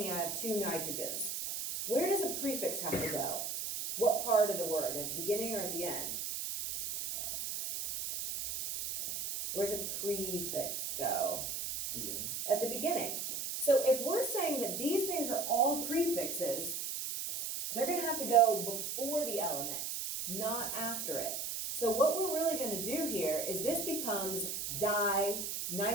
I have 2 nitrogens. Where does a prefix have to go? What part of the word, at the beginning or at the end? Where's a prefix go? Beginning. At the beginning. So if we're saying that these things are all prefixes, they're gonna have to go before the element, not after it. So what we're really gonna do here is this becomes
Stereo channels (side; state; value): right; noise; hiss, 3 dB below the sound